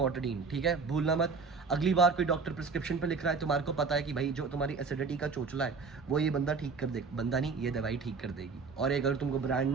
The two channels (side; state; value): left; quieter; 4.8 dB